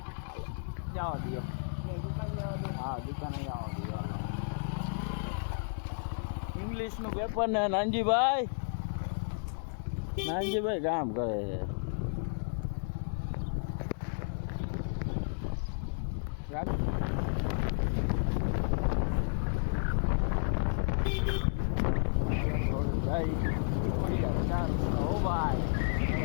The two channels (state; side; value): silent; right; digital silence